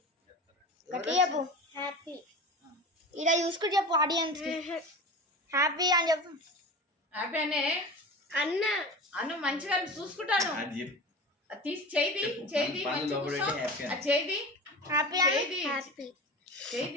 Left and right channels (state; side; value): normal; both; correlation 0.32